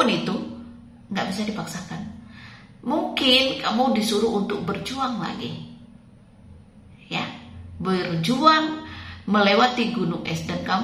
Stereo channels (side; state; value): both; identical; correlation 1.00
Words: itu, nggak bisa dipaksakan. Mungkin kamu disuruh untuk berjuang lagi, ya, berjuang melewati gunung es, dan